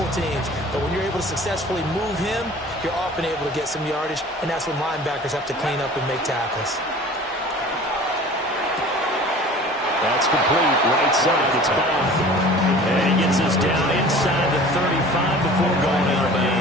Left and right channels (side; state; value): both; normal; correlation 0.44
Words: teams. But when you're able to successfully move him, you're often able to get some yardage. And that's when linebackers have to clean up and make tackles. That's complete. Right side. It's back. And he gets us down inside the 35 before going out of